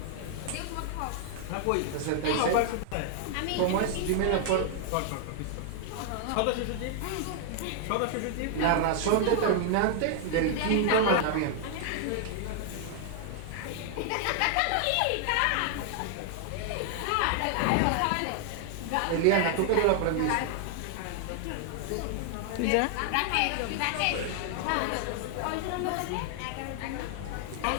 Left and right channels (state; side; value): different; both; correlation 0.00